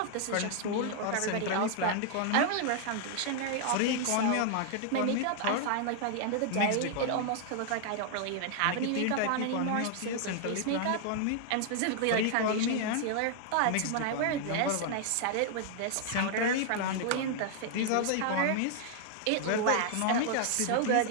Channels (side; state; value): both; different; correlation 0.00